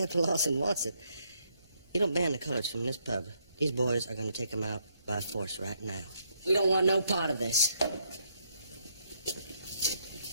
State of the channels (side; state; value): both; inverted; correlation -0.74